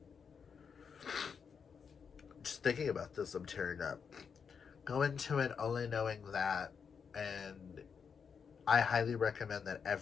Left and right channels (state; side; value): quieter; right; 6.3 dB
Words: Just thinking about this, I'm tearing up. Go into it only knowing that, and I highly recommend that